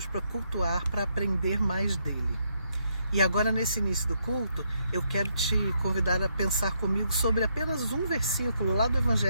para cultuar, para aprender mais dele. E agora, nesse início do culto, eu quero te convidar a pensar comigo sobre apenas um versículo lá do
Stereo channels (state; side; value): inverted; both; correlation -0.76